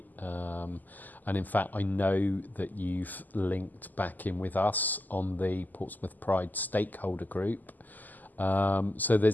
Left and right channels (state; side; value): late; right; 0.084 ms